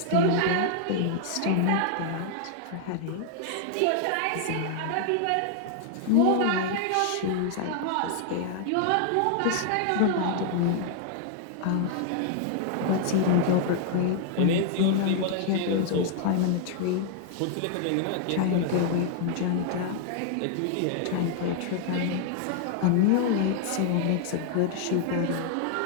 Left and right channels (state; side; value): different; both; correlation 0.00